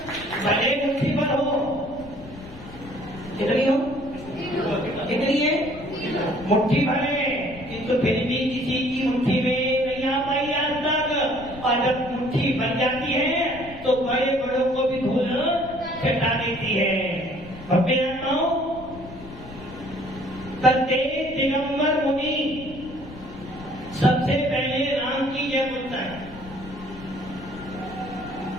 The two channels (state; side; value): noise; left; rumble, 16 dB below the sound